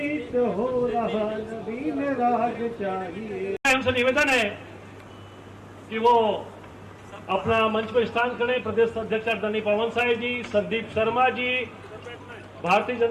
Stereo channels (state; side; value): identical; both; correlation 1.00